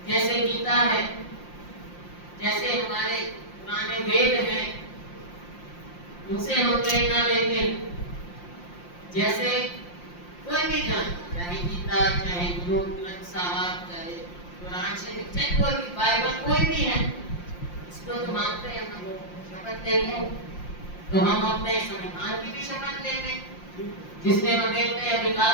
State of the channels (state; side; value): late; right; 5.7 ms